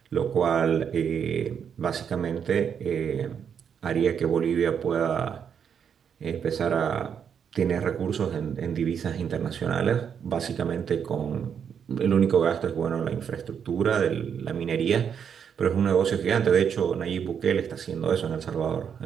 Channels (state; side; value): quieter; left; 7.6 dB